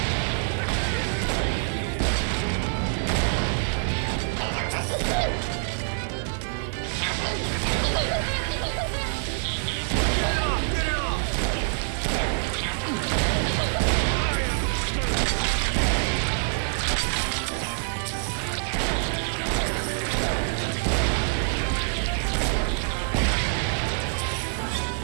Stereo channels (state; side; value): silent; left; 61 dB below the other